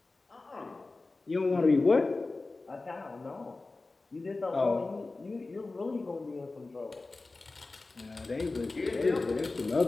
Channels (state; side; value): quieter; right; 3.4 dB